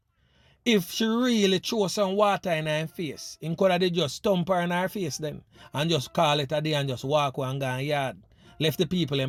If she really throw some water in her face, him could have just stomp her in her face then and just call it a day and just walk away and go in yard. Left the people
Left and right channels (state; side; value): identical; both; correlation 1.00